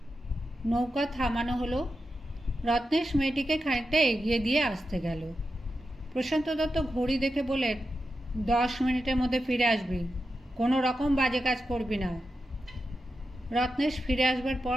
নৌকা থামানো হলো। রত্নেশ মেয়েটিকে খানিকটা এগিয়ে দিয়ে আসতে গেল। প্রশান্ত দত্ত ঘড়ি দেখে বলেন, 10 মিনিটের মধ্যে ফিরে আসবি। কোনো রকম বাজে কাজ করবি না। রত্নেশ ফিরে আসবার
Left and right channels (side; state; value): both; normal; correlation 0.89